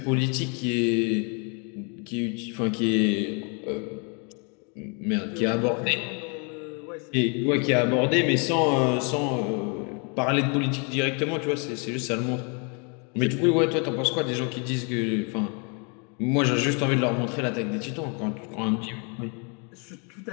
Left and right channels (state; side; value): quieter; right; 35.6 dB